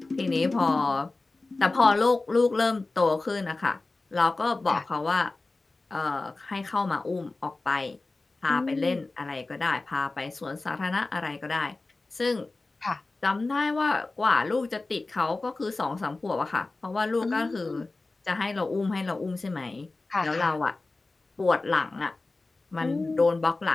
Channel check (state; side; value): quieter; right; 3.3 dB